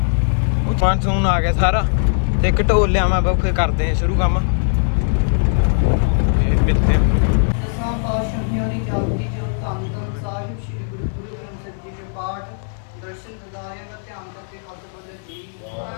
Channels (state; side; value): silent; right; 58 dB below the other